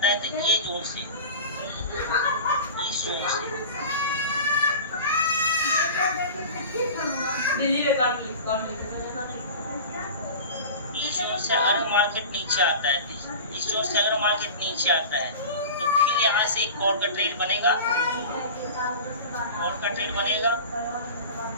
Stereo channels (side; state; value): both; inverted; correlation -0.35